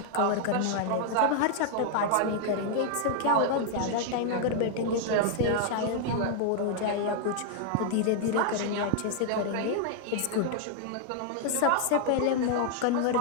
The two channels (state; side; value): different; both; correlation 0.00